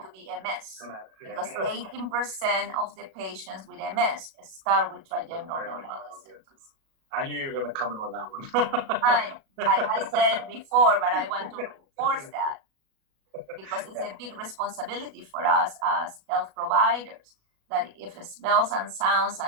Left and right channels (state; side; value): late; left; 37 ms